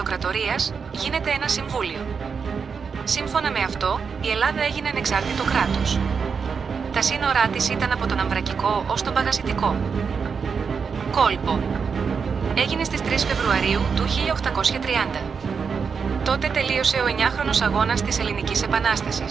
γίνεται ένα συμβούλιο. Σύμφωνα με αυτό, η Ελλάδα έγινε ανεξάρτητο κράτος. Τα σύνορά της ήταν από τον Αμβρακικό ως τον Παγασιτικό. Κόλπο. Έγινε στις 3 Φεβρουαρίου του 1830. Τότε τελείωσε ο 9χρονος αγώνας της Ελληνικής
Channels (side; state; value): left; quieter; 5.8 dB